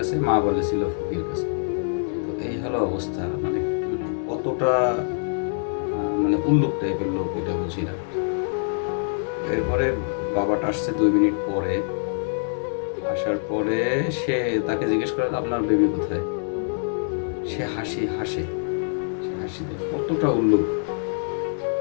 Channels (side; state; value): right; silent; digital silence